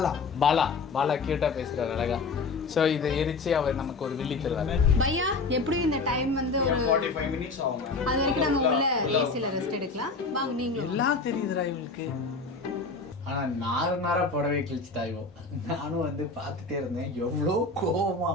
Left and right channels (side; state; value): right; quieter; 4.0 dB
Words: கியூட்டா பேசுறாரு, அழகா. ஸோ இதை எரிச்சு அவர் நமக்கு ஒரு வில்லி தருவாரு. பையா எப்படியும் இந்த டைம் வந்து ஒரு 45 minutes ஆகும். அது வரைக்கும் நம்ம உள்ள ஏசில ரெஸ்ட் எடுக்கலாம். வாங்க நீங்களும். எல்லாம் தெரியுதுடா இவளுக்கு. ஆனா நாரா புடவை கிழிச்சுட்டாயும் நானும் வந்து பார்த்துட்டே இருந்தேன். எவ்வளோ கோவமா